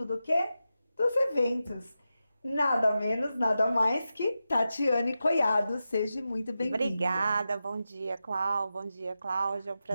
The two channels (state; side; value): inverted; both; correlation -0.91